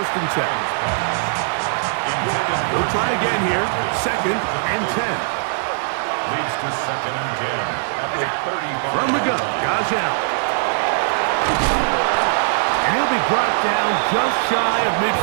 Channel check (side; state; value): left; silent; digital silence